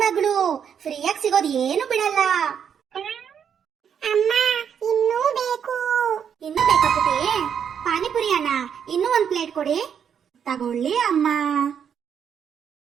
ಮಗಳು, ಫ್ರೀಯಾಗಿ ಸಿಗೋದು ಏನು ಬಿಡಲ್ಲ. ಅಮ್ಮ, ಇನ್ನೂ ಬೇಕು. ಇನ್ನೂ ಬೇಕಾ ಪುಟ್ಟಿ? ಪಾನಿಪುರಿ ಅಣ್ಣ, ಇನ್ನೂ ಒಂದ್ ಪ್ಲೇಟ್ ಕೊಡಿ. ತಗೊಳ್ಳಿ ಅಮ್ಮ.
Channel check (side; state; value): left; quieter; 7.9 dB